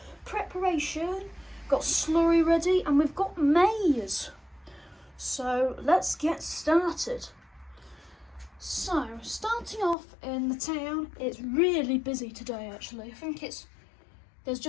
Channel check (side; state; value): right; drops out; at 10.0 s